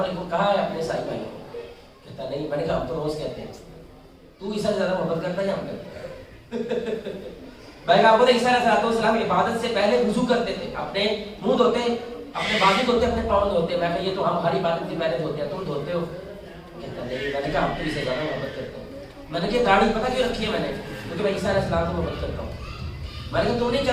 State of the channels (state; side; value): identical; both; correlation 1.00